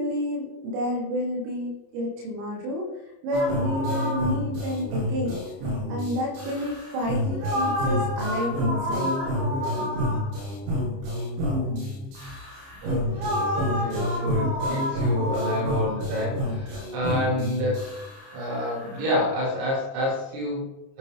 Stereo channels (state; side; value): late; left; 30 ms